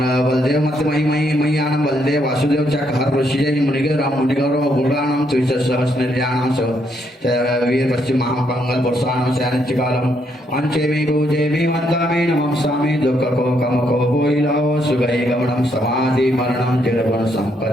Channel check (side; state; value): both; normal; correlation 0.74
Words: बलदेव मत मही मय्यानं बलदेव वासुदेव चक हर ऋषिजय मुनिगर मुनिगौरव गुणानां त्रिसहस्रनिर्याणां स वीर पश्चिम महापंगल वर्षाणां स्यानिच्चिकालम् अंचेमि पूजेमि वन्दामि नमस्सामि दुःखको कमको भोइलाओ सुगै गमनं समाधि मरणं तिरगुण